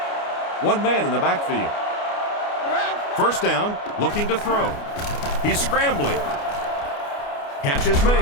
One man in the backfield. 1st down, looking to throw. He's scrambling. Catch is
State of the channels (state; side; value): late; right; 29 ms